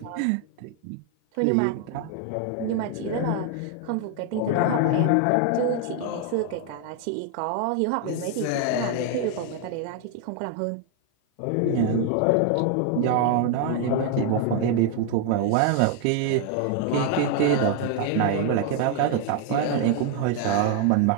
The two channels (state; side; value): different; both; correlation 0.00